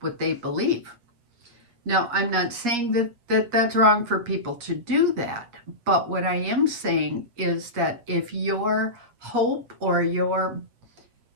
they believe. Now, I'm not saying that's wrong for people to do that, but what I am saying is that if your hope or you're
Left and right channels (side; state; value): left; late; 8.5 ms